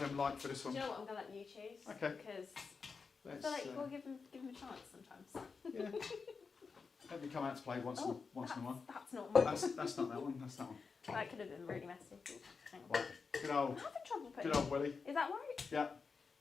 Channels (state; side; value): quieter; right; 5.0 dB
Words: like for this Do one? you know what? I'm going to let you choose. Okay. Because I Let's, feel like you've got to give them a chance sometimes. yeah. Let me come out to play once in a while. That's not mine. That's not that one. That's that one. That could have been really messy. Hang on. Right. Good old. I'm having trouble putting. Good old Willie. Is that right? Yeah.